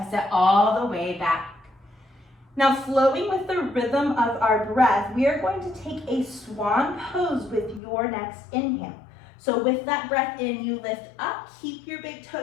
it all the way back. Now flowing with the rhythm of our breath, we are going to take a swan pose with your next inhale. So with that breath in, you lift up, keep your big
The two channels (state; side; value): drops out; right; at 7.8 s